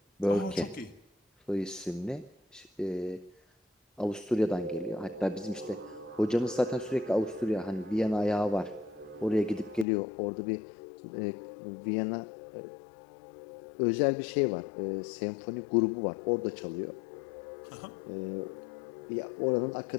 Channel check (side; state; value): right; drops out; at 9.9 s